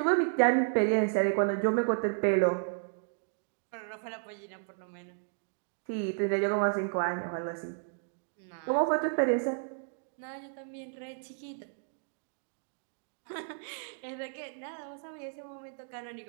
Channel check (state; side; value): silent; left; digital silence